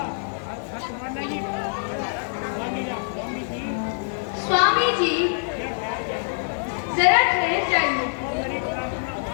स्वामी जी जरा ठहर जाइए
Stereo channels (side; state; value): right; silent; digital silence